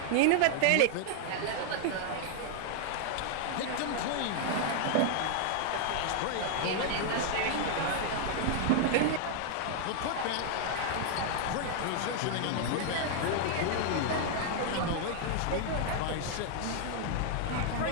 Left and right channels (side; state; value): both; different; correlation 0.00